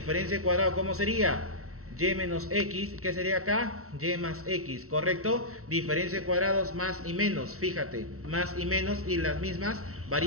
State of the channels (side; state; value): left; late; 0.63 ms